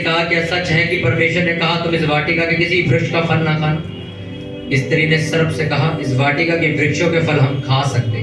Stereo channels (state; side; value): identical; both; correlation 1.00